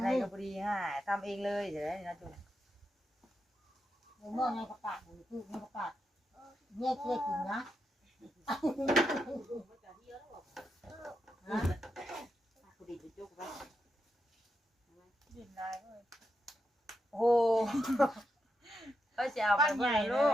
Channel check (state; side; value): normal; both; correlation 0.85